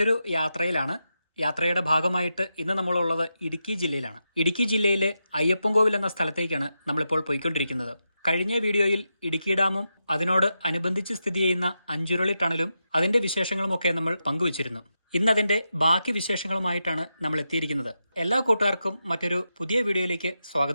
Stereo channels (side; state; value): both; inverted; correlation -0.87